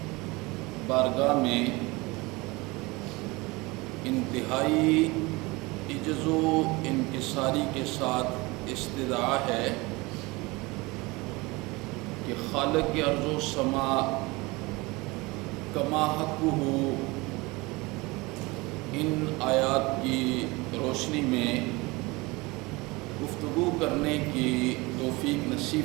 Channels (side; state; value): left; quieter; 23.7 dB